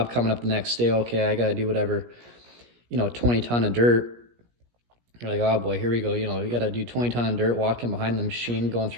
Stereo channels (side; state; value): left; late; 17 ms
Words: coming up the next day. Okay, I got to do whatever, 20 ton of dirt. You're like, oh boy, here we go. You got to do 20 ton of dirt, walking behind the machine, going